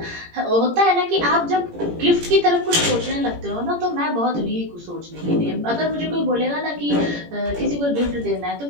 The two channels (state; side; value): late; left; 17 ms